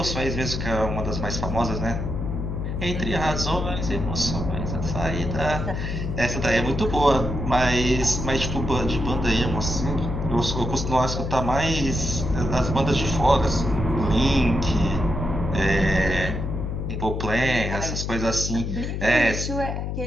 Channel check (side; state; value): left; noise; hum, 3 dB below the sound